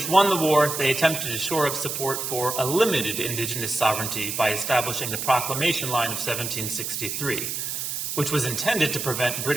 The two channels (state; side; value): noise; right; hiss, 4 dB below the sound